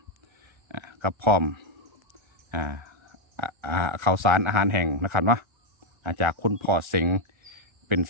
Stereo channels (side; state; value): left; late; 1.4 ms